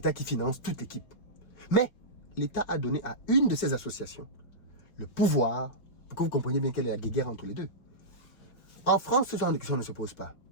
qui finance toute l'équipe. Mais l'État a donné à une de ces associations le pouvoir, pour que vous compreniez bien quelle est la guerre entre les deux. En France, ce genre de questions ne se pose pas,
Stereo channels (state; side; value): late; right; 5.4 ms